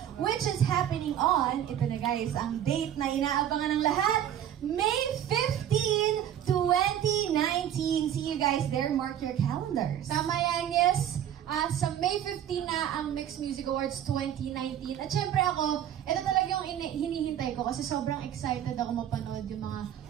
which is happening on, ito na guys, ang date na inaabangan ng lahat, May 15, 2019. See you guys there. Mark your calendars. Tama yan, yes. Sa May 15 na ang Mixed Music Awards 2019. At syempre ako, ito talaga yung hinihintay ko kasi sobrang excited ako mapanood yung mga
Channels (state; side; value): quieter; left; 10.4 dB